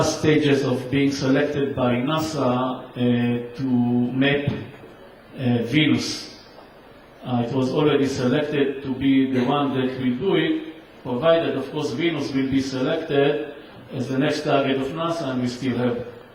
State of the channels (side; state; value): both; identical; correlation 1.00